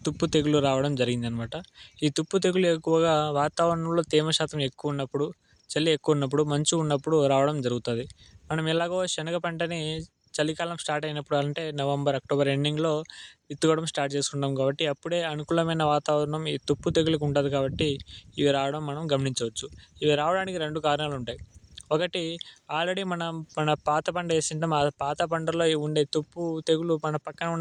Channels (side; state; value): both; identical; correlation 1.00